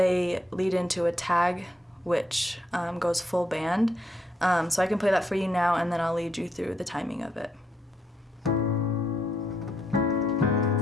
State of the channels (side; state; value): both; normal; correlation 0.76